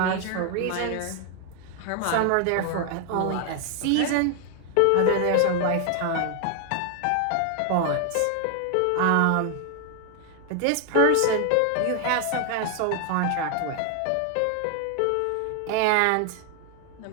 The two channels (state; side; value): different; both; correlation 0.00